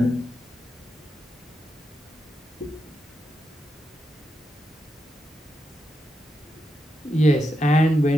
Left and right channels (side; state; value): both; normal; correlation 0.85